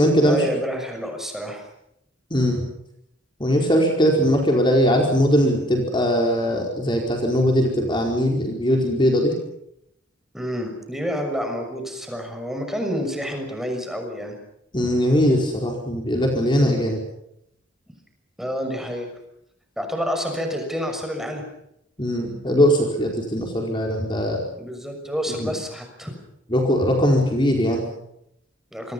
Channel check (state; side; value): normal; both; correlation 0.62